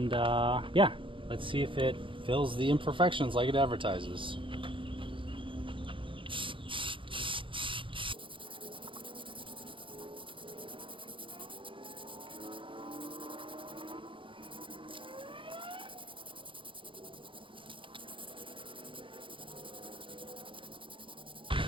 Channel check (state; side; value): late; left; 0.25 ms